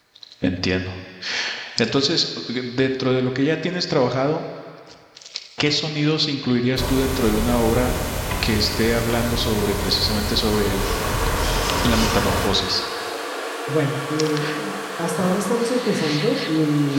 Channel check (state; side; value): identical; both; correlation 1.00